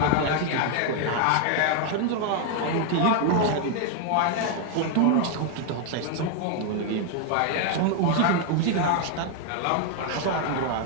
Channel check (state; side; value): different; both; correlation 0.00